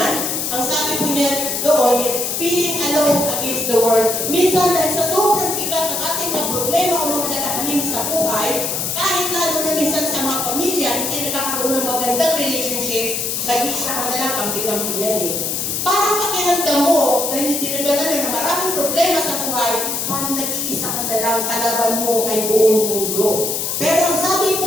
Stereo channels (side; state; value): left; noise; hiss, 1 dB below the sound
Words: Ang sabi po niya doon is, feeling alone against the world. Minsan, dahil sa sobrang bigat ng ating mga problema o mga nagkakanin sa buhay, kahit lalo na minsan sa mga pamilya, hindi nakakaroon ng magandang relationship, nag-iisa ka na lang, kampi-kampi yan eh. Parang pakiramdam mo, dahil hindi nagdala na maraming problema sa buhay, parang nag-iisa ka na lang, kalaban mo ay buong mundo. Pero ang sabi